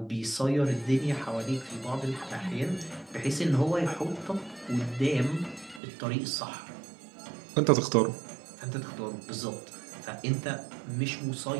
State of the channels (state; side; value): drops out; left; at 5.8 s